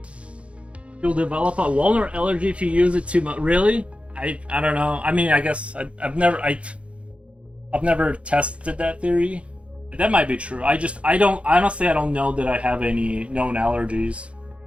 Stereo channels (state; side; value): late; left; 0.061 ms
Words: You'll develop a walnut allergy if you use it too much. Really? I don't know. I mean, I guess I've never tested that theory. That might be true. I don't honestly I don't know that I have any known allergies.